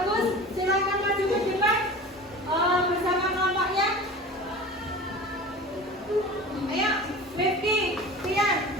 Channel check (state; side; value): normal; both; correlation 0.37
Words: Silakan maju ke depan bersama kelompoknya. Ayo, Rifki, Tian,